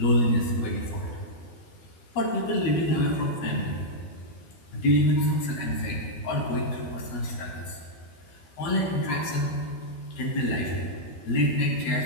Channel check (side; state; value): right; late; 12 ms